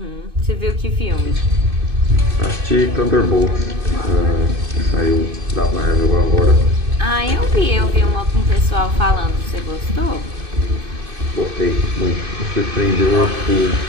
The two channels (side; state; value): left; late; 2.5 ms